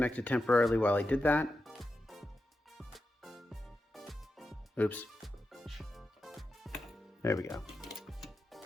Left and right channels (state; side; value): normal; both; correlation 0.89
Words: temporarily while I did that. Oops. There we go.